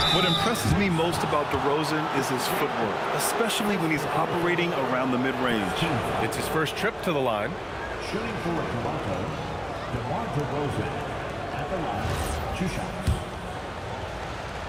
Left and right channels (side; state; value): both; identical; correlation 1.00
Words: What impresses me most about DeRozan is his footwork, especially when he's operating around the mid-range. It's his first trip to the line. Shooting for Toronto, DeMar DeRozan. At the line, 2 shots.